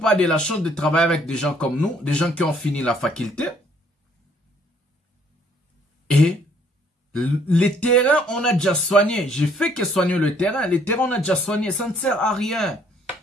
a de la chance de travailler avec des gens comme nous, des gens qui ont fini la faculté. Et les terrains, on a déjà soigné. J'ai fait que soigner le terrain. Les terrains, on a déjà soigné. Ça ne sert à rien.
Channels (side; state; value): both; normal; correlation 0.63